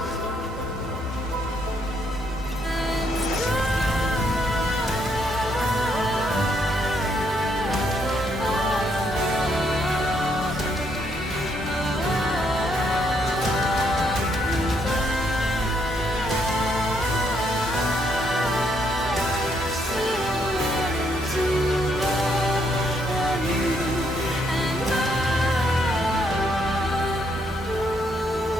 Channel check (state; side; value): normal; both; correlation 0.73